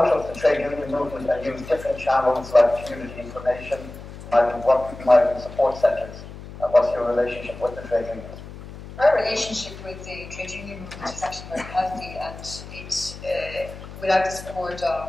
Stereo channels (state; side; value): noise; left; hum, 14 dB below the sound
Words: of the trade union movement and use different channels like community information, migrant support centres? And what's your relationship with the trade unions? Our relationship with the trade union movement is actually very healthy, and it's without the support